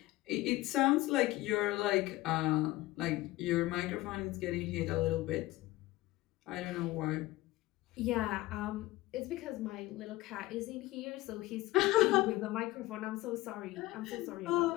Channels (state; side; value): quieter; right; 18.2 dB